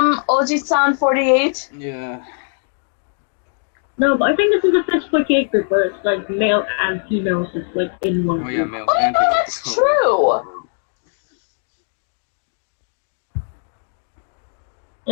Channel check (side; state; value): right; silent; 63 dB below the other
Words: Oji-san 48? Yeah. No, but I think this is the first 48 group where it's like male and female just like in one group. Oh yeah, males and females. That's true!